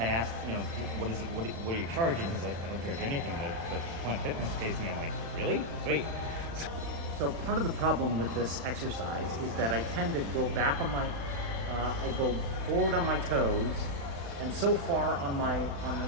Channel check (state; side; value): late; left; 35 ms